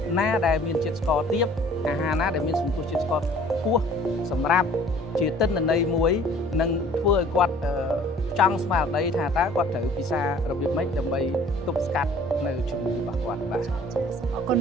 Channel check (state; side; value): normal; both; correlation 0.52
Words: ណាដែលមានជាតិស្ករទាបអាហារណាដែលមានសន្ទុះជាតិស្ករខ្ពស់សម្រាប់ជាទិន្នន័យមួយនឹងធ្វើឲ្យគាត់ចង់ស្មារតីថាតើគាត់ត្រូវពិសារបៀបម៉េចដើម្បីទប់ស្កាត់នៅជំងឺរបស់គាត់បាទអរគុណ